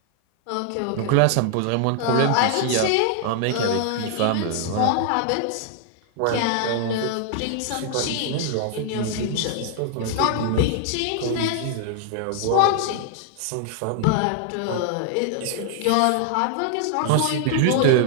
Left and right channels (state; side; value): different; both; correlation 0.00